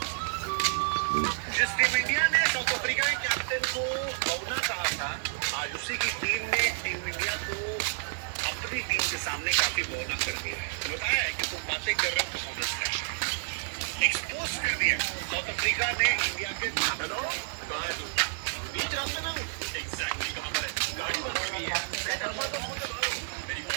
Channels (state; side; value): silent; left; 58 dB below the other